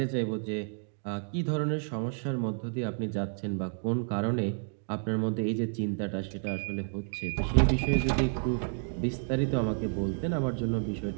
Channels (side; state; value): left; silent; digital silence